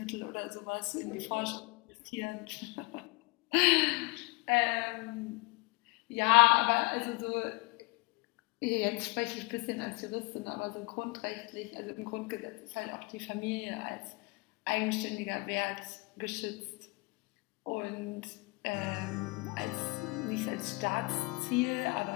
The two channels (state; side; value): quieter; right; 26.8 dB